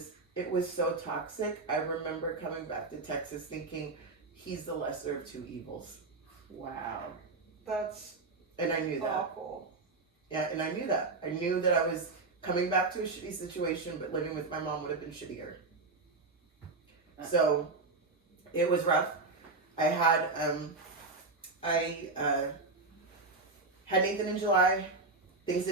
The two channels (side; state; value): left; quieter; 3.6 dB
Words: so toxic. I remember coming back to Texas thinking he's the lesser of two evils. Wow. That's And I knew that. awful. Yeah, and I knew that. I knew that I was coming back to a shitty situation, but living with my mom would have been shittier. So it was rough. I had had Nathan in July. Things